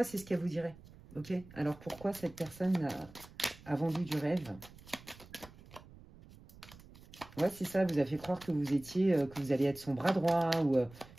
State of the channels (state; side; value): noise; right; rumble, 21 dB below the sound